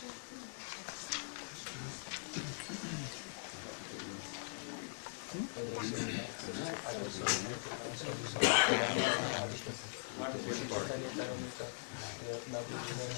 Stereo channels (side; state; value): right; silent; digital silence